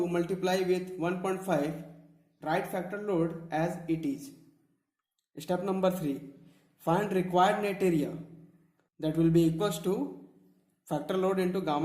multiply with 1.5, write factor load as it is. Step number 3, find required net area, that will be equals to factor load into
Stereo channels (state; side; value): identical; both; correlation 1.00